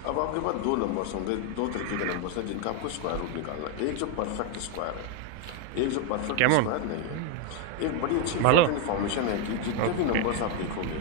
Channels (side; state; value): both; different; correlation 0.01